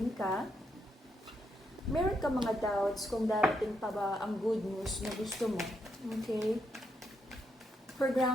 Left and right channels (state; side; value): normal; both; correlation 0.80